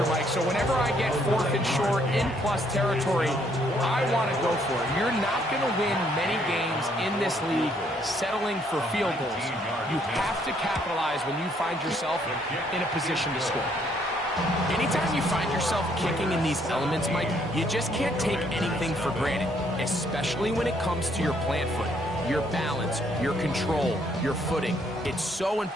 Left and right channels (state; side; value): normal; both; correlation 0.68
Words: Mike, so whenever I get fourth and short in plus territory, I want to go for it. You're not going to win many games in this league settling for field goals. You have to capitalize when you find yourself in a position to score. Anytime you find yourself kicking in these elements, Mike, you just can't take anything for granted, especially when it comes to your plant foot, your balance, your control, your footing. It's so